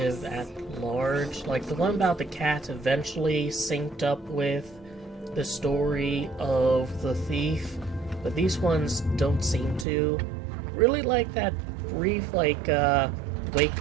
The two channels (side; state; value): left; drops out; at 9.9 s